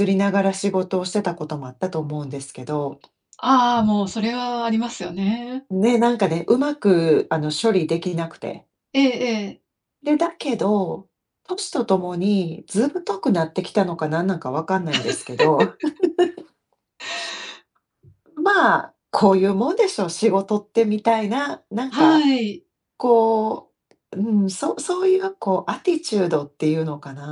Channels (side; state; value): both; identical; correlation 1.00